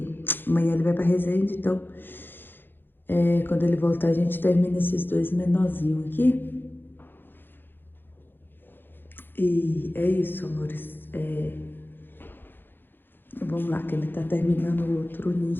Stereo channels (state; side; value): late; right; 0.099 ms